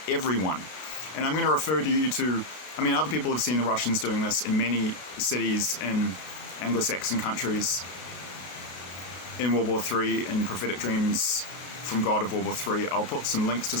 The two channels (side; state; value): right; late; 33 ms